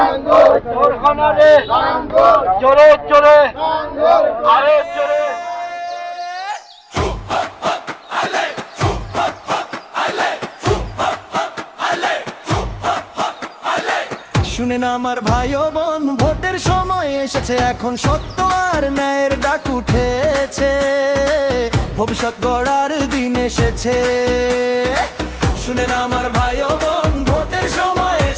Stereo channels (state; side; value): identical; both; correlation 1.00